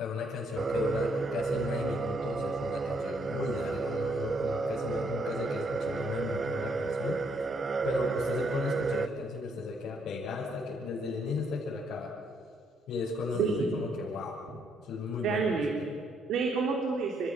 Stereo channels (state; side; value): normal; both; correlation 0.72